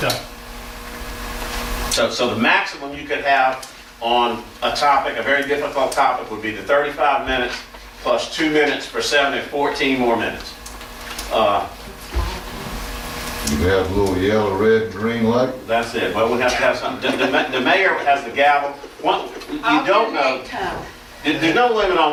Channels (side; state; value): both; identical; correlation 1.00